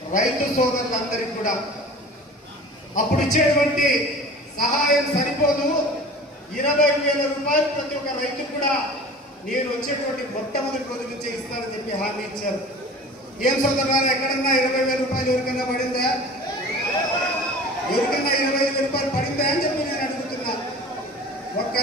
రైతు సోదరులందరికీ కూడా అప్పుడు ఇచ్చేటువంటి సహాయం సరిపోదు, 20,000 రూపాయలు ప్రతి ఒక్క రైతు కూడా నేను వచ్చేటువంటి మొట్టమొదటి రోజు నుంచే ఇస్తానని చెప్పి హామీ ఇచ్చారు. ఏం సోదరులారా, ఎక్కడన్నా 20,000 రూపాయలు ఎవరికన్నా పడిందా? ఎవరికన్నా 20,000 రూపాయలు పడిందా అని చెప్పి నేను అడుగుతున్నా. ఒక్క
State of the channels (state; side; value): normal; both; correlation 0.40